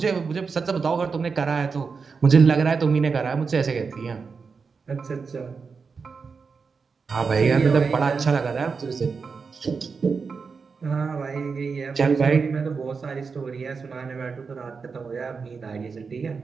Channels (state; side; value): quieter; left; 5.1 dB